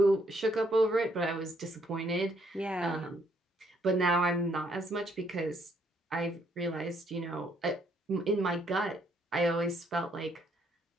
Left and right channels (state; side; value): normal; both; correlation 0.70